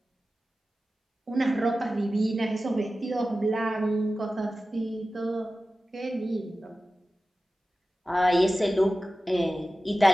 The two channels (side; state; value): both; normal; correlation 0.95